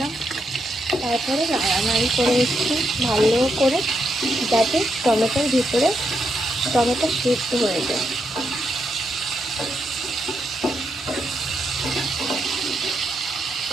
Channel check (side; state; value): both; normal; correlation 0.81